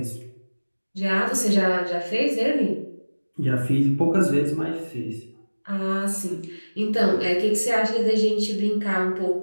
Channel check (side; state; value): both; inverted; correlation -1.00